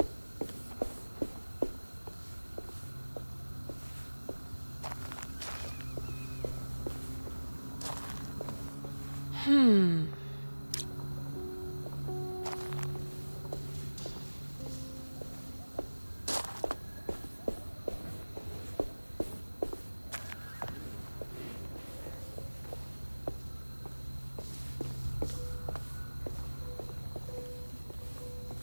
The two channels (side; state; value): both; inverted; correlation -1.00